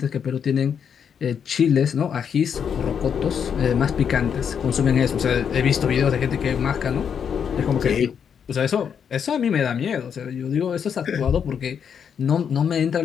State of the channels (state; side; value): quieter; right; 7.5 dB